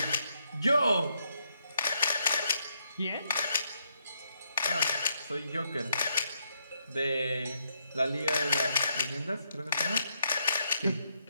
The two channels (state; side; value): inverted; both; correlation -0.77